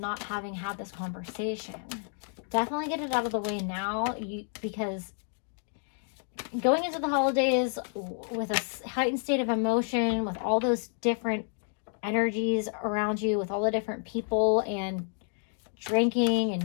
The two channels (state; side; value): silent; right; 58 dB below the other